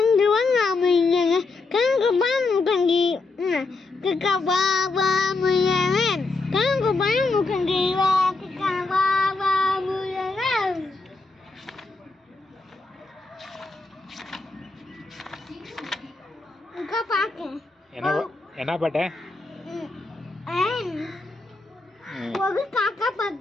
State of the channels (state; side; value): quieter; right; 3.6 dB